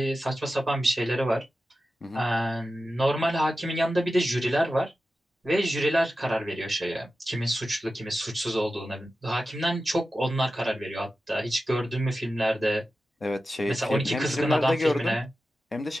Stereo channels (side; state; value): both; normal; correlation 0.93